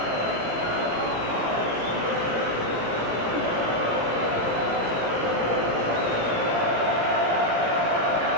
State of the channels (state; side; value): late; left; 18 ms